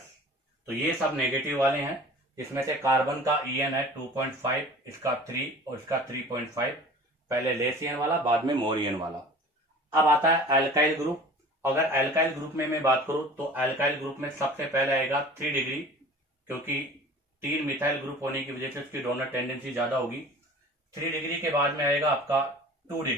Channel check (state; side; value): normal; both; correlation 0.43